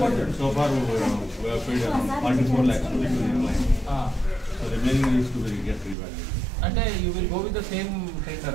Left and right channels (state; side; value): drops out; left; at 6.0 s